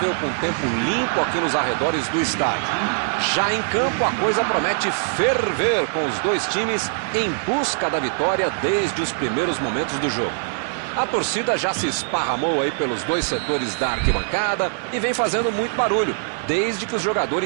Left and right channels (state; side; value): silent; left; digital silence